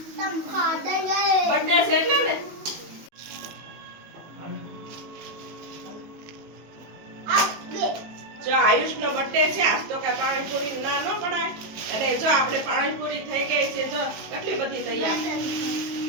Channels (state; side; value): late; left; 19 ms